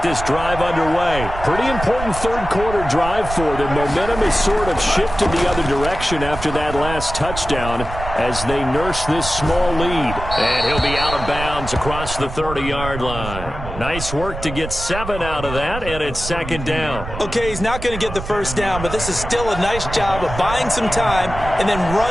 this drive underway. Pretty important third quarter drive for them. Momentum has sort of shifted the other direction after that last touchdown as they nurse this small lead. And he'll be out of bounds across the 30-yard line. Nice work to get 7 out of that, and it's second down. Okay, he's not going to get the first down, but this is still a nice job of buying some time and then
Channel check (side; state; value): right; noise; rumble, 8 dB below the sound